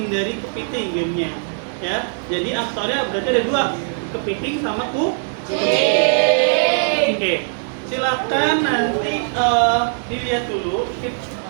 kepiting gamenya ya. Jadi aktornya berarti ada 2, kepiting sama kucing. Oke. Silakan nanti dilihat dulu.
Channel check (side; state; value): left; silent; digital silence